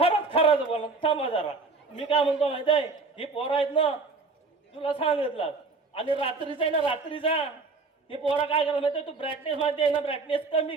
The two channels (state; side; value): quieter; left; 4.0 dB